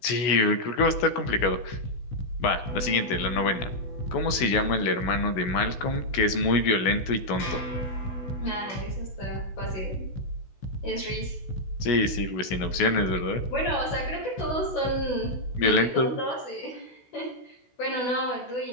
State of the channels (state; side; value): late; right; 16 ms